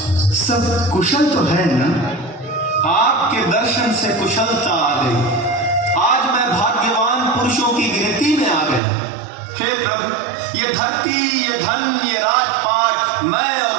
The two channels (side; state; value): left; drops out; at 8.8 s